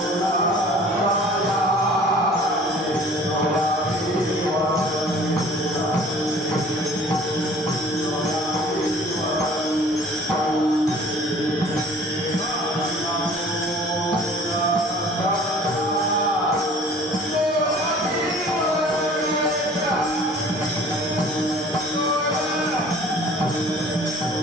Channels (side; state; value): both; normal; correlation 0.50